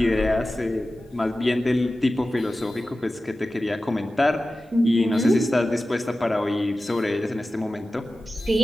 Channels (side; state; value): both; normal; correlation 0.94